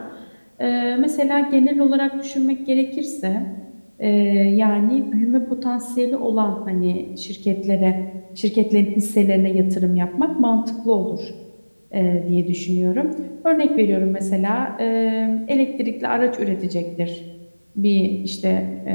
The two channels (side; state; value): both; inverted; correlation -1.00